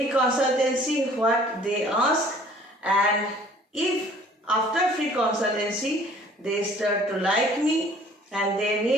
consultancy, what they ask, and if after free consultancy they start to like me and they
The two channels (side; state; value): both; normal; correlation 0.53